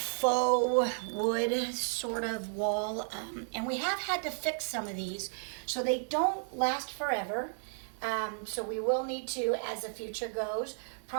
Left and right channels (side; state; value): left; silent; digital silence